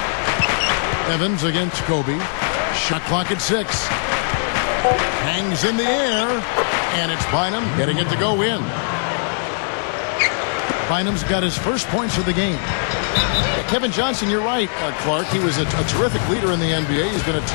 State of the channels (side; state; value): right; silent; digital silence